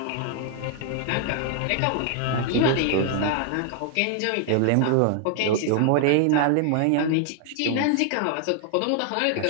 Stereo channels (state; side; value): different; both; correlation 0.00